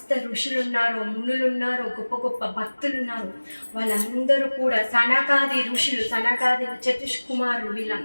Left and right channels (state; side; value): inverted; both; correlation -1.00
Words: ఋషులు ఉన్నారో, మునులు ఉన్నారో, గొప్ప గొప్ప భక్తులు ఉన్నారో, వాళ్ళందరూ కూడా, సనకాది ఋషులు, సనకాది చతుష్కుమారులు,